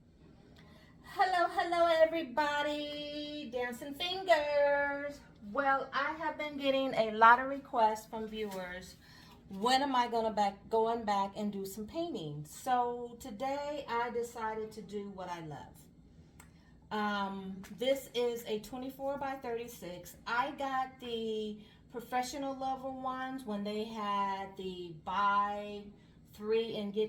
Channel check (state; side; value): identical; both; correlation 1.00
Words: Hello, everybody. Dancing fingers. Well, I have been getting a lot of requests from viewers. When am I going back and do some painting? So today I decided to do what I love. This is a 24 by 36. I got the professional level ones when they had the buy 3 and